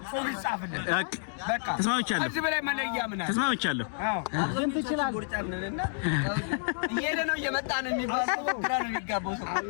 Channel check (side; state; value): right; silent; digital silence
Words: ጽሑፍ ይጻፍልን። በቃ ተስማምቻለሁ። እዚህ በላይ መለያ ምን አለ? ተስማምቻለሁ። ግን ትችላለህ። ቁርጫምንና እየሄደ ነው እየመጣ ነው የሚባለው ግራ ነው የሚጋባው